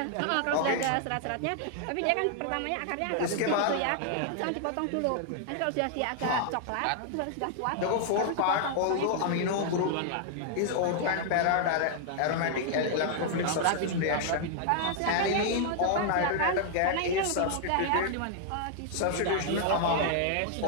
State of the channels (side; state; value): both; different; correlation 0.00